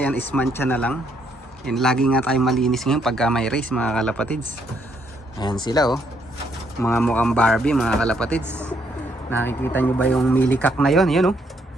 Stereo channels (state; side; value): normal; both; correlation 0.72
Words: yan is mancha na lang. Yan, lagi nga tayo malinis ngayon pagka may race mga kalapatids. Ayan sila oh. Mga mukhang Barbie mga kalapatids. Nakikita nyo ba yung milikak na yon? Yan oh.